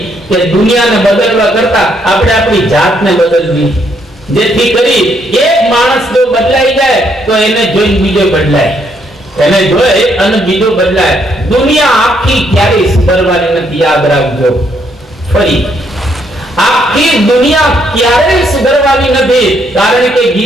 કે દુનિયાને બદલવા કરતા આપણે આપણી જાતને બદલવી, જેથી કરી એક માણસ જો બદલાઈ જાય તો એને જોઈને બીજો બદલાય, એને જોઈ અને બીજો બદલાય. દુનિયા આખી ક્યારેય સુધરવાની નથી, યાદ રાખજો. ફરી આખી દુનિયા ક્યારેય સુધરવાની નથી, કારણ કે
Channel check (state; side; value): normal; both; correlation 0.72